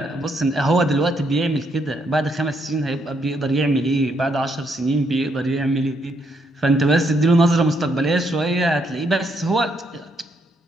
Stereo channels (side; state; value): both; normal; correlation 0.75